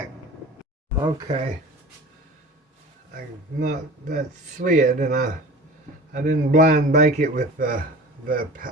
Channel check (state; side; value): normal; both; correlation 0.39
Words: Okay, that slid, and I didn't blind bake it with the